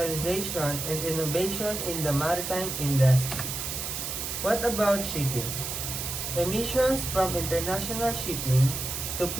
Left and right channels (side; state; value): right; noise; hiss, 4 dB below the sound